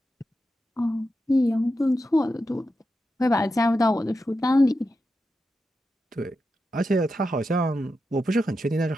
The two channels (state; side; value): normal; both; correlation 0.88